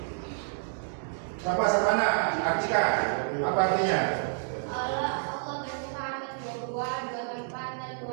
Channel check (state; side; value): silent; left; digital silence